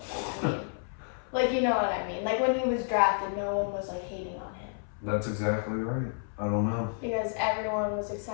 Braun. Like, you know what I mean? Like, when he was drafted, no one was, like, hating on him. That's exactly right. I don't know. Because everyone was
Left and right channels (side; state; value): right; silent; 58 dB below the other